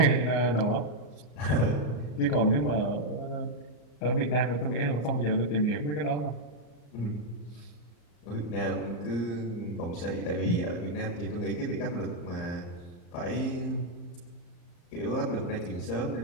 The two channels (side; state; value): right; late; 34 ms